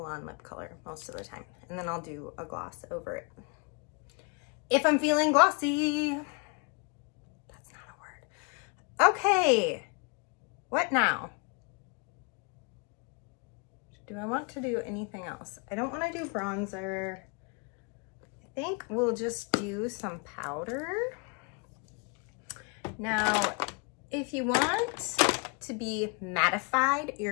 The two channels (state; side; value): quieter; right; 33.2 dB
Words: lip color most of the time. And then I'll do a gloss over it. If I'm feeling glossy. That's not a word. Okay. What now? Do I want to do anything else? I don't want to do bronzer. I think we'll just do some powder. Now, if you want to be mattified,